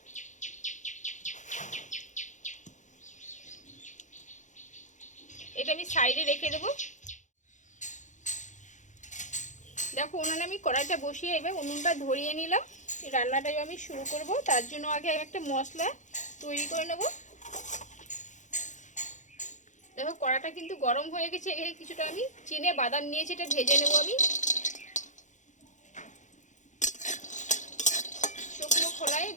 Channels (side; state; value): right; late; 0.35 ms